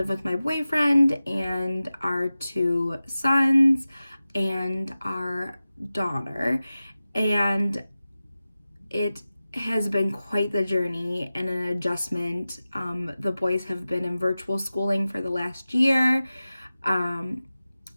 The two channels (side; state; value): both; inverted; correlation -0.95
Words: with my boyfriend and our 2 sons and our daughter, and it has been quite the journey and an adjustment. The boys have been in virtual schooling for the last year.